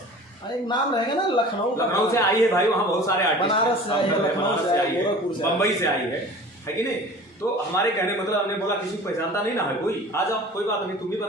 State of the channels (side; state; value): both; normal; correlation 0.41